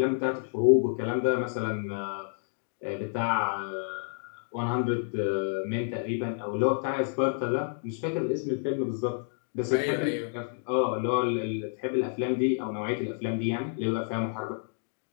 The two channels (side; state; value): right; silent; digital silence